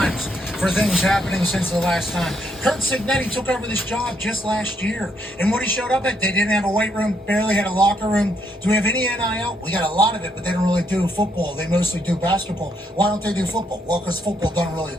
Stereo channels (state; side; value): normal; both; correlation 0.75